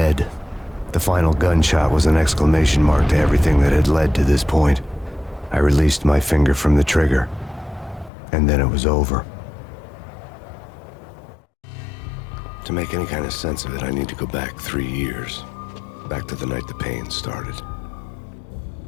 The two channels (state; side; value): drops out; right; at 8.1 s